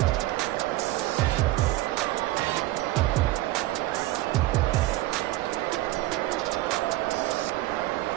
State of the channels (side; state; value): left; quieter; 17.3 dB